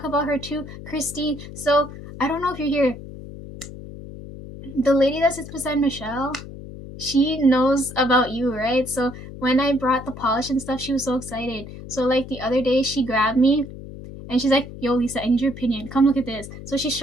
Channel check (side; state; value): left; noise; hum, 13 dB below the sound